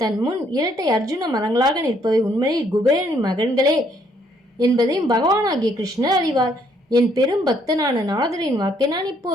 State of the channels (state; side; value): normal; both; correlation 0.68